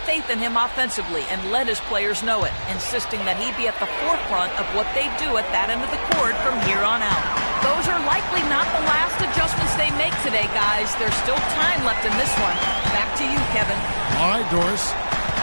faith in him offensively and let his players know it, insisting that he be at the forefront of what they do at that end of the court from here on out. Those are likely not the last adjustments they make today, guys. There's still time left in this one. Back to you, Kevin. All right, Doris.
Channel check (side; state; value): both; inverted; correlation -1.00